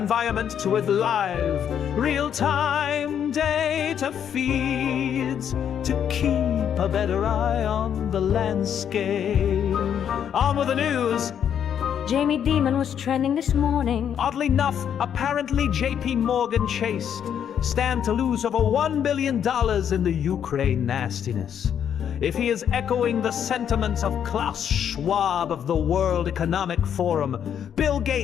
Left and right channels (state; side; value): quieter; right; 8.8 dB